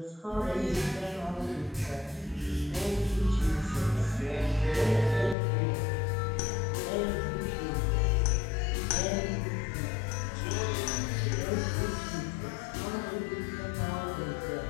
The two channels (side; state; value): right; drops out; at 5.4 s